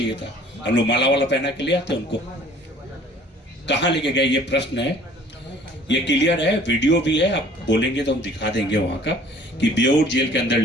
था। हम लोग माला वाला पहना के ले आते उनको, कहां लेके गए, ये प्रश्न है। ये क्लियर है, वीडियो भी है, आप बोलेंगे तो हम दिखा देंगे वहां का कि बेऊर जेल के अंदर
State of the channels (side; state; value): both; normal; correlation 0.53